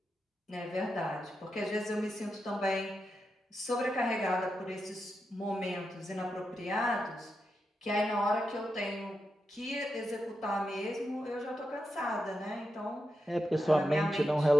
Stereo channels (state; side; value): normal; both; correlation 0.87